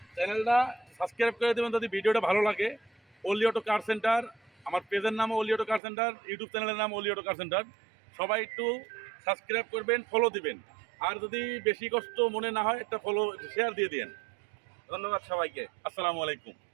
চ্যানেলটা সাবস্ক্রাইব করে দেবেন যদি ভিডিওটা ভালো লাগে ওলি অটো কার সেন্টার আমার পেজের নাম ওলি অটো কার সেন্টার ইউটিউব চ্যানেলের নাম ওলি অটো কার সেন্টার সবাই একটু সাবস্ক্রাইব করবেন ফলো দিবেন আর যদি বেশি কষ্ট মনে না হয় একটা ফলো শেয়ার দিয়ে দিন ধন্যবাদ সবাইকে আসসালামু আলাইকুম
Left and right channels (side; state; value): left; drops out; at 5.8 s